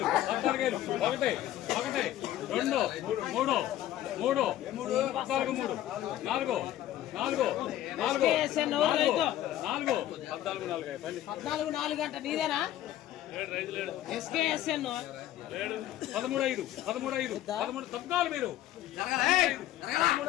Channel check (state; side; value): quieter; right; 13.1 dB